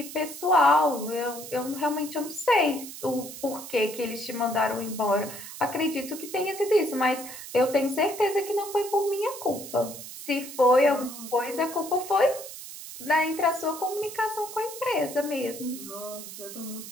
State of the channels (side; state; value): right; noise; hiss, 12 dB below the sound